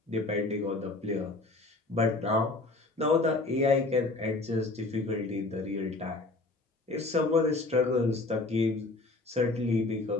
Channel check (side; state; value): right; quieter; 3.2 dB